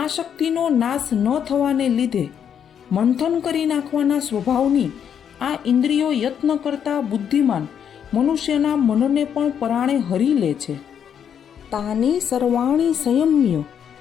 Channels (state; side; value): quieter; right; 8.4 dB